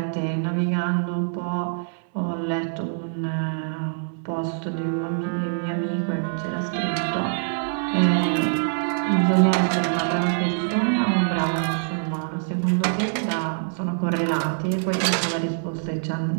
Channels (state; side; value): silent; left; 62 dB below the other